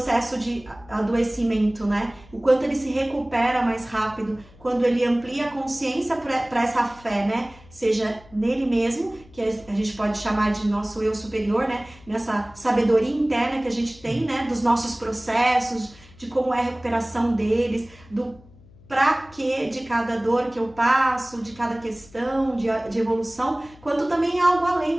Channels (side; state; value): left; noise; hum, 24 dB below the sound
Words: de adoecimento, né? O quanto ele se recupera mais rápido, quando ele amplia a consciência para essa fé, né? Seja nele mesmo, que a gente pode chamar de nosso eu superior, né? Nessa sabedoria interna que a gente tem, né? Dos nossos processos, de como é a recuperação deles, do pra quê de cada dor que eu passo, de cada questão de evolução, quanto também algo